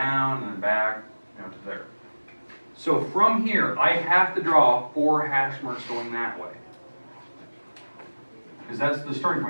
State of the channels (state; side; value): inverted; both; correlation -1.00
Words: and then back, to there. So from here, I have to draw 4 hash marks going that way. Because that's the starting